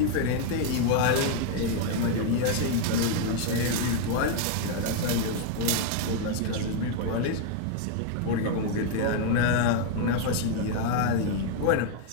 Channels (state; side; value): different; both; correlation 0.00